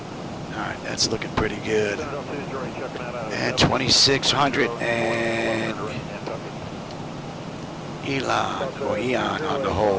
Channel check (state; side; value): identical; both; correlation 1.00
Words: Alright, that's looking pretty good. And 2600 and Eon on the